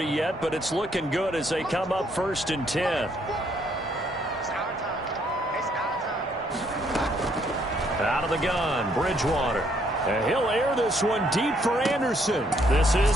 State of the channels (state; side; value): normal; both; correlation 0.69